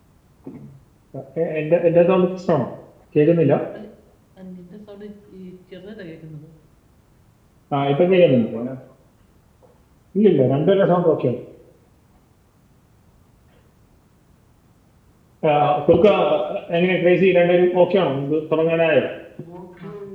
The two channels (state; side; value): identical; both; correlation 1.00